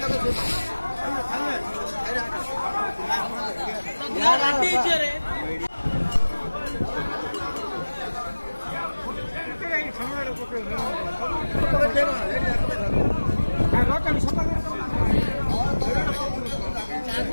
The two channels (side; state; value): both; inverted; correlation -1.00